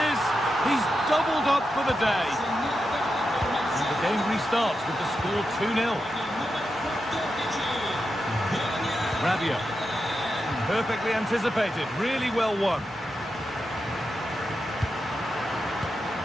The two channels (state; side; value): normal; both; correlation 0.88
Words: is. He's doubled up for the day. And the game restarts with the score 2-0. Rabiot. Perfectly anticipated. Really well won.